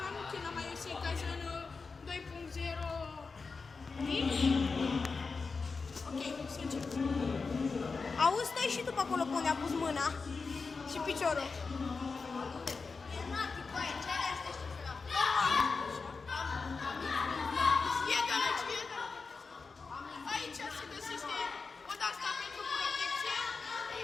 Kenama USA Kaizen 2.0. Ok, să începem. Auzi, stai și tu pe acolo pe unde a pus mâna și piciorul. Aici se găsește o de-asta pentru protecție.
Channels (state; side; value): quieter; right; 4.5 dB